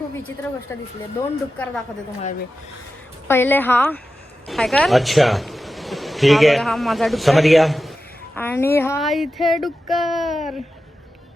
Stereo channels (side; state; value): both; normal; correlation 0.92